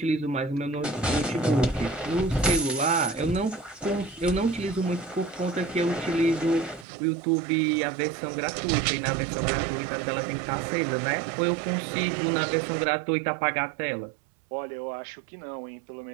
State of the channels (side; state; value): left; drops out; at 6.9 s